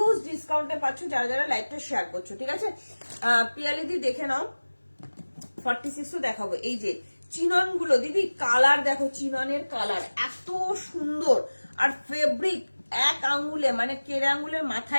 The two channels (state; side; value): inverted; both; correlation -1.00